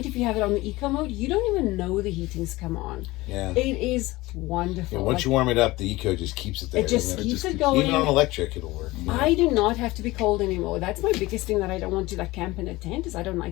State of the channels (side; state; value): right; quieter; 20.0 dB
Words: if you have it on the eco mode, you don't even know the heating's come on. Yeah. It is wonderful. Yeah, once you warm it up, the eco just keeps it there. it just doesn't keeps It it just going. Even on electric, it'll work. Yeah. I do not have to be cold anymore. That's my biggest thing that I don't want to like camp in a tent is I don't